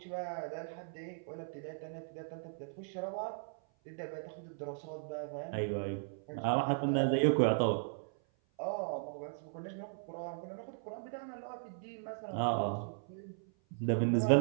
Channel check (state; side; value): silent; left; 53 dB below the other